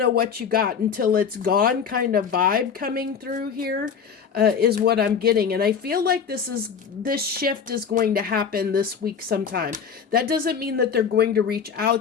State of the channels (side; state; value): right; quieter; 6.8 dB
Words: what you got until it's gone kind of vibe coming through here, is what I'm getting. And I feel like this shift is going to happen this week sometime. That doesn't mean that they're going to reach